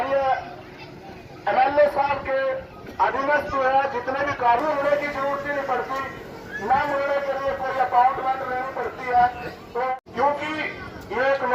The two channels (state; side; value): identical; both; correlation 1.00